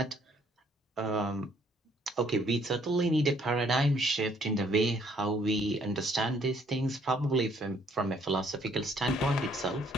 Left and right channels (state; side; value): normal; both; correlation 0.64